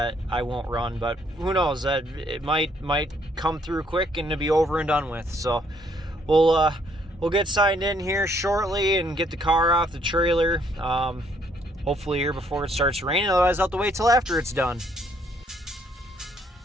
won't run, but who knows, that it might come through quick and to be over and done with. So we'll get signed in here shortly and get the car off the trailer. Hopefully here before it starts raining, otherwise I'll have to wait till after it's done.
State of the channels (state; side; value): normal; both; correlation 0.67